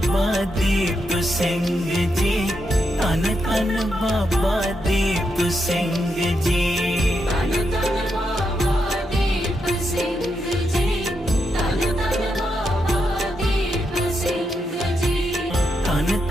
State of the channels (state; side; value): normal; both; correlation 0.83